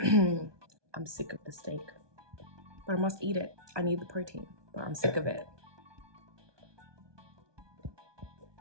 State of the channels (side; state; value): left; late; 1.2 ms